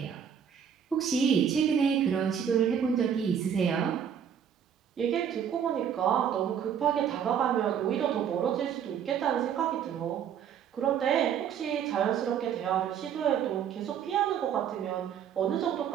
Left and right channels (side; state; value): left; quieter; 8.3 dB